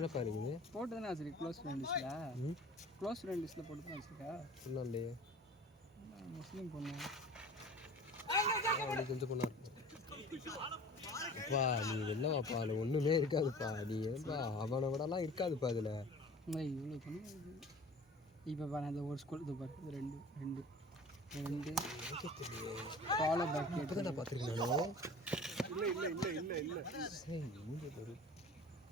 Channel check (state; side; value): normal; both; correlation 0.43